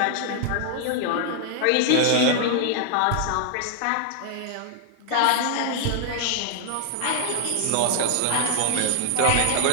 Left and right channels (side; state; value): both; different; correlation -0.01